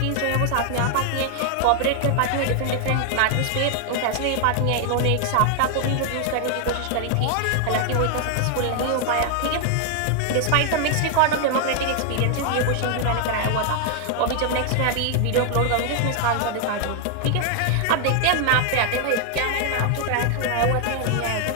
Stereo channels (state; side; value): different; both; correlation 0.00